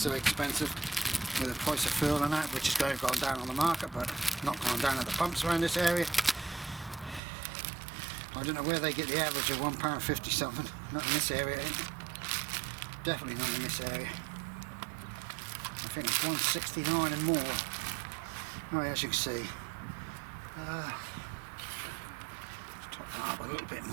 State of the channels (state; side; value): drops out; left; at 7.2 s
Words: expensive with the price of fuel and that, which is going down on the market, but not going down at the pumps around this area. I don't know where they get the average of £1.50 something. Not in this area. Definitely not in this area. I think it's £1.69 and more. Right, as you can see. Let's top that up a little bit